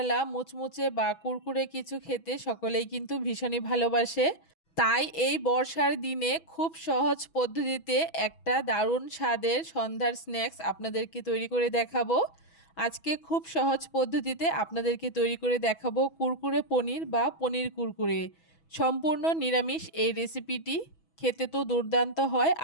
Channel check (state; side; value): late; right; 6.1 ms